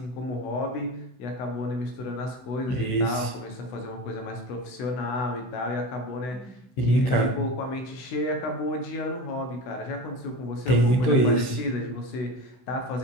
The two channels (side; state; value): right; late; 16 ms